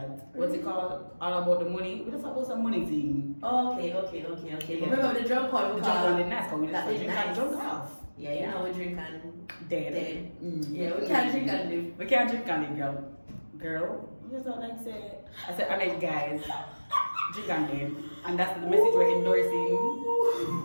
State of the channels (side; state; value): both; inverted; correlation -1.00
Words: What's it called? All about the money. We just about some money thing. Okay. Yeah. Remember the drunk one? The drunk one, the nice one. We just drink nice. and drunk off. Yeah, you know we drink and dead. Yeah, we can't drink and live. We can't drink and live, girl. Girl, you just don't like say. I said, I mean, guys, drink and live. And that's the message we're endorsing